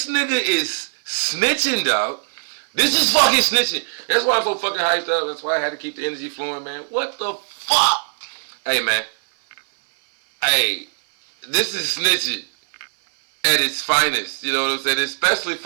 nigga is snitching, dog. This is fucking snitching. That's why I'm so fucking hyped up. That's why I had to keep the energy flowing, man. What the fuck? Hey, man. Hey, this is snitching at its finest. You know what I'm saying? Especially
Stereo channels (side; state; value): left; silent; 65 dB below the other